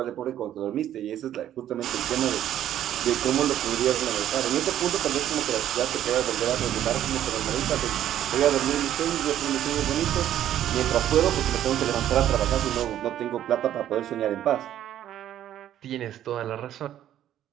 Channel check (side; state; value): left; quieter; 11.5 dB